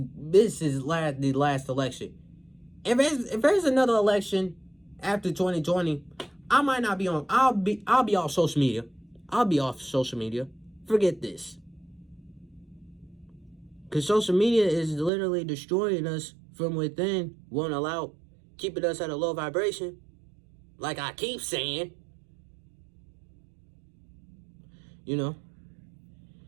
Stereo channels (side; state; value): left; drops out; at 15.1 s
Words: last election. If there's another election after 2020, I might not be on. I'll be off social media. I'll be off social media. Forget this. Because social media is literally destroying us from within. Won't allow, keeping us at a low vibration. Like I keep saying. You know.